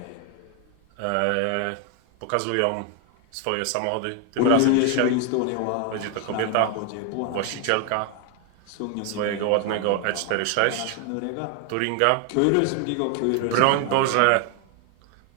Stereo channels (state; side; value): different; both; correlation 0.01